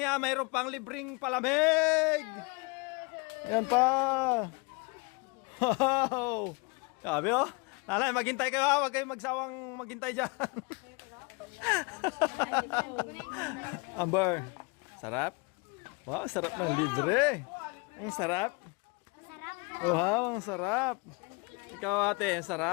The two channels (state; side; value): quieter; right; 28.3 dB